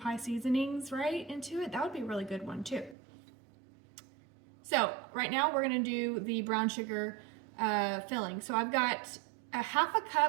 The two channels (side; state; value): left; drops out; at 3.0 s